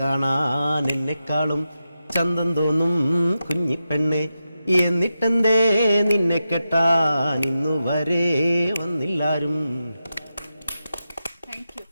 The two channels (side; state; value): both; inverted; correlation -0.90